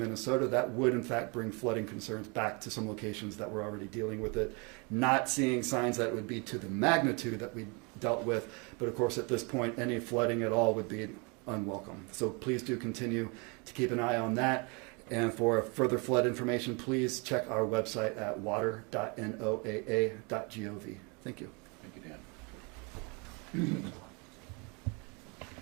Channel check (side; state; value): left; quieter; 31.6 dB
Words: that would in fact bring flooding concerns back to some locations that were already dealing with it. Not seeing signs that would be to the magnitude that we dealt with, but of course at this point any flooding at all would be unwelcome. So please do continue to keep an eye on that. And for further flood information, please check our website at water.noaa.gov. Thank you. Thank you, Dan.